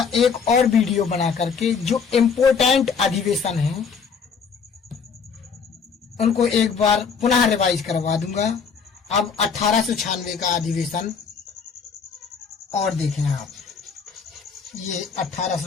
एक और वीडियो बना करके जो इम्पोर्टेंट अधिवेशन है उनको एक बार पुनः रिवाइज करवा दूंगा। अब 1896 का अधिवेशन और देखें आप, ये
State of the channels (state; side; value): quieter; right; 5.9 dB